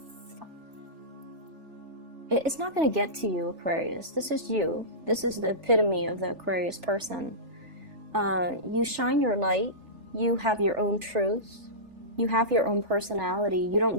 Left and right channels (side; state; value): left; late; 3.4 ms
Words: It's not going to get to you, Aquarius. This is you. This is the epitome of the Aquarius person. You shine your light. You have your own truth. You have your own personality. You